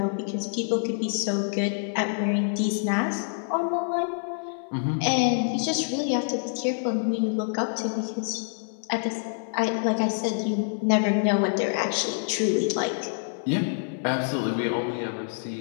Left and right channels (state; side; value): silent; right; 60 dB below the other